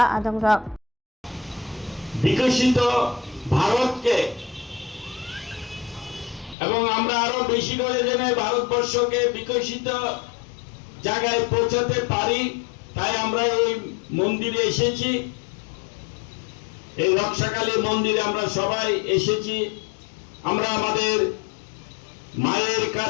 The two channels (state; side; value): drops out; right; at 6.6 s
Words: आदंरक বিকশিত ভারতকে এবং আমরা আরো বেশি করে যেন ভারতবর্ষকে বিকশিত জায়গায় পৌঁছাতে পারি তাই আমরা এই মন্দিরে এসেছি। এই রক্ষাকালী মন্দিরে আমরা সবাই এসেছি। আমরা আমাদের মায়ের